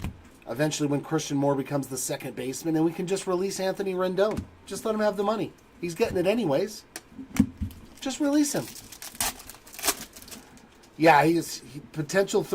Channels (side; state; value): both; identical; correlation 1.00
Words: Eventually when Christian Moore becomes the second baseman, and we can just release Anthony Rendon. Just let him have the money. He's getting it anyways. Just release him. Yeah, he's potential